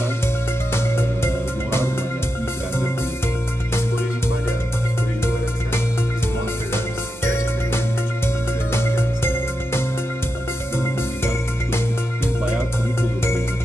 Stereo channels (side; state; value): both; normal; correlation 0.88